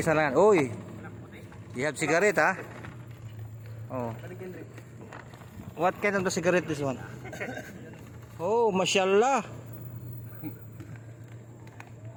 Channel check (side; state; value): both; identical; correlation 1.00